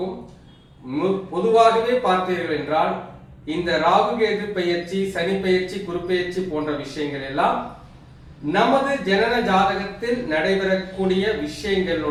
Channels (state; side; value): identical; both; correlation 1.00